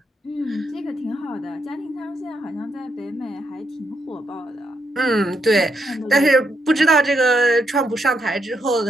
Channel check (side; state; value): both; normal; correlation 0.79